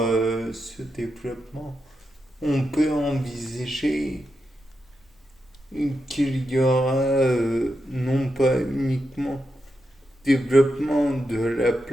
ce développement, on peut envisager qu'il y aura non pas uniquement développement de la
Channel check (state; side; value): normal; both; correlation 0.86